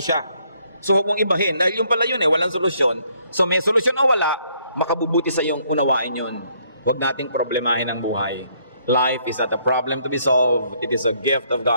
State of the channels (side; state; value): both; inverted; correlation -0.69